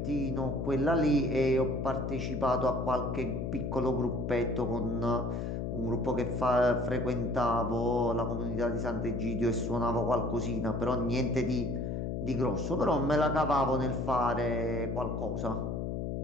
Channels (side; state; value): left; noise; hum, 2 dB below the sound